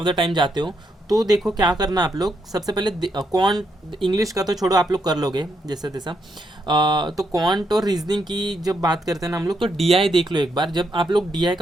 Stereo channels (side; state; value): both; normal; correlation 0.79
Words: द टाइम जाते हो, तो देखो क्या करना आप लोग। सबसे पहले क्वांट, इंग्लिश का तो छोड़ो, आप लोग कर लोगे जैसे तैसा। तो क्वांट और रीजनिंग की जब बात करते हैं ना हम लोग, तो डीआई देख लो एक बार। जब आप लोग डीआई